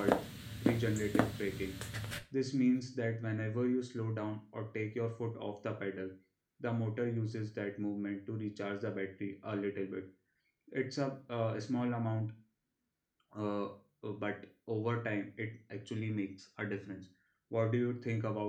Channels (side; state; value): both; identical; correlation 1.00